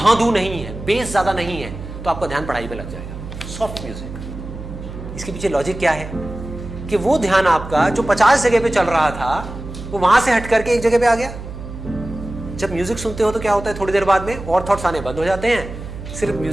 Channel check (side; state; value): right; noise; hum, 10 dB below the sound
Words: नहीं है, बेस ज्यादा नहीं है, तो आपका ध्यान पढ़ाई में लग जाएगा। सॉफ्ट म्यूजिक, इसके पीछे लॉजिक क्या है कि वो ध्यान आपका जो 50 जगह पे चल रहा था वो वहां से हट करके एक जगह पे आ गया। जब म्यूजिक सुनते हो तो क्या होता है, थोड़ी देर बाद में और थॉट्स आने बंद हो जाते हैं, सिर्फ